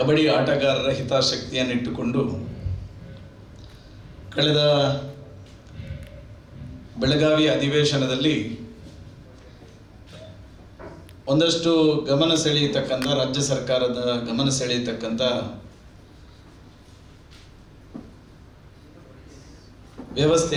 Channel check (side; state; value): both; identical; correlation 1.00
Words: ಆಟಗಾರರ ಹಿತಾಸಕ್ತಿಯನ್ನಿಟ್ಟುಕೊಂಡು ಕಳೆದ ಬೆಳಗಾವಿ ಅಧಿವೇಶನದಲ್ಲಿ ಒಂದಷ್ಟು ಗಮನ ಸೆಳೆಯತಕ್ಕಂಥ ರಾಜ್ಯ ಸರ್ಕಾರದ ಗಮನ ಸೆಳೆಯತಕ್ಕಂಥ